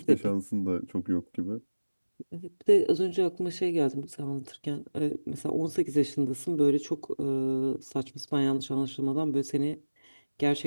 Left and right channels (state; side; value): inverted; both; correlation -1.00